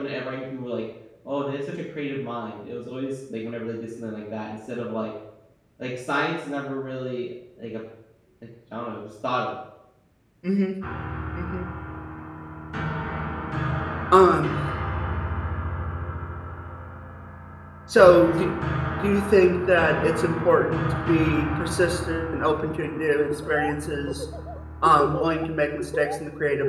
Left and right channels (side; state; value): both; identical; correlation 1.00